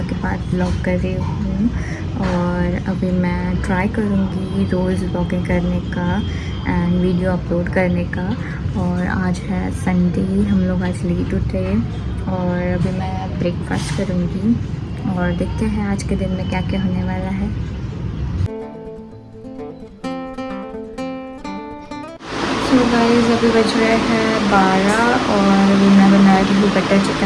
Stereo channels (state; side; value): identical; both; correlation 1.00